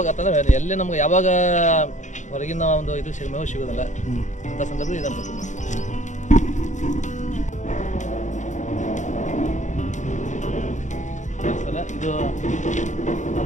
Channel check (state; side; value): late; right; 0.35 ms